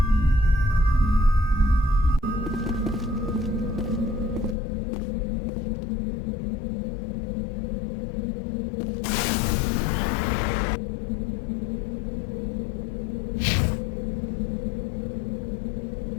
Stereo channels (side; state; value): right; drops out; at 4.5 s